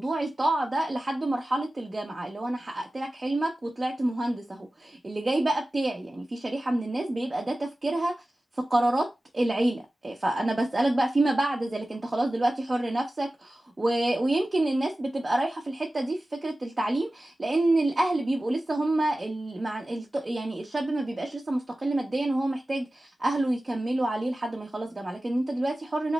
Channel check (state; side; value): normal; both; correlation 0.96